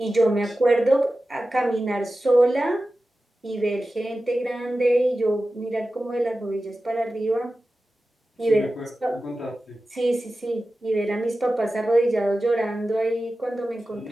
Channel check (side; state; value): both; normal; correlation 0.94